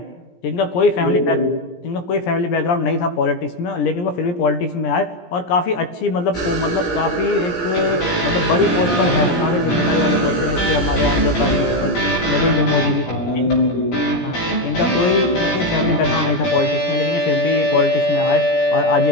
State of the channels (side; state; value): right; late; 17 ms